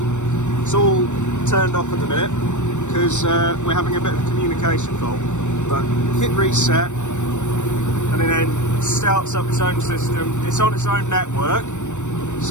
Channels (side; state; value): right; late; 0.84 ms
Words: It's all turned off at the minute because we're having a bit of a communication fault. But hit reset and it then starts up its own system. It's on its own network.